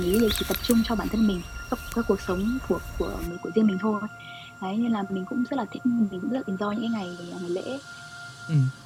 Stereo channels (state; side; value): identical; both; correlation 1.00